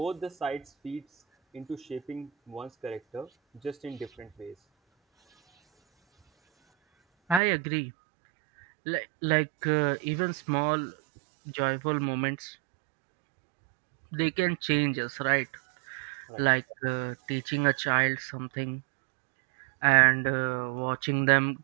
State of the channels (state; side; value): drops out; left; at 7.4 s